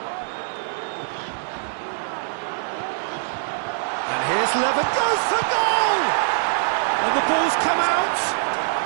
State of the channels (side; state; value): left; silent; digital silence